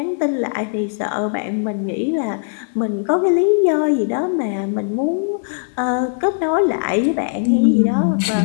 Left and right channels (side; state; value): right; silent; digital silence